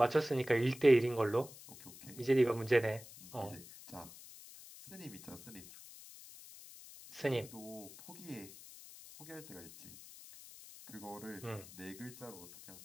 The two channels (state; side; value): noise; left; hiss, 17 dB below the sound